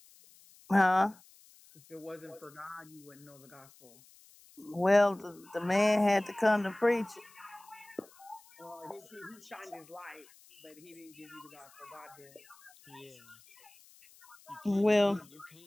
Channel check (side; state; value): left; noise; hiss, 25 dB below the sound